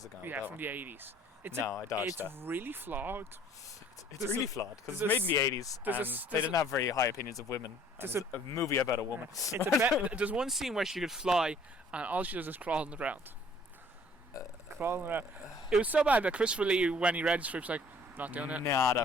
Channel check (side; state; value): both; normal; correlation 0.56